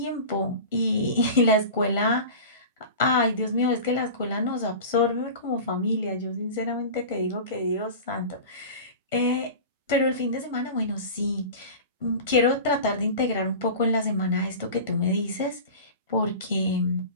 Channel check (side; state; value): both; inverted; correlation -0.33